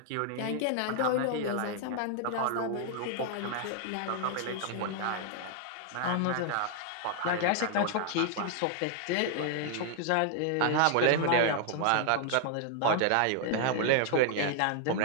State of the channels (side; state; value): both; different; correlation 0.00